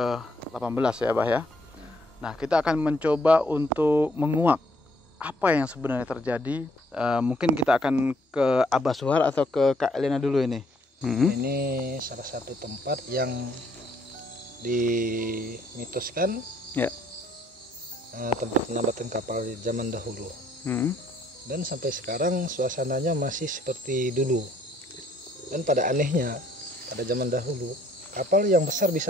ya Abah ya. Nah, kita akan mencoba untuk menguak apa yang sebenarnya terjadi. Mungkin kita akan ke Abah Suhar atau ke Kak Elena dulu ini. Ini salah satu tempat yang dimitoskan Ya. Tempat penambatan kapal di zaman dahulu. Dan sampai sekarang suasananya masih seperti dulu. Dan pada anehnya, pada zaman dahulu kapal yang besar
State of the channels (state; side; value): normal; both; correlation 0.66